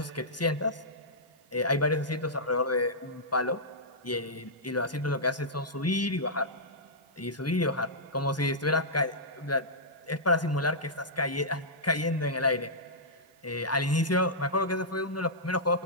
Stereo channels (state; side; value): normal; both; correlation -0.13